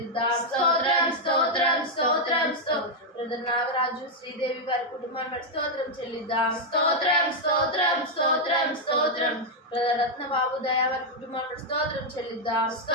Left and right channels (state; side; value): normal; both; correlation -0.01